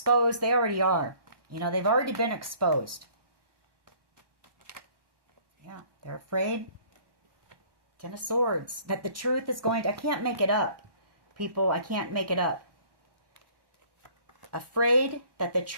They already are. They've already been exposed. Yeah, they're afraid. Ten of Swords. That the truth is going to... I can't make it up, people. I can't make it up. Afraid that the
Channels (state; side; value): late; left; 1.1 ms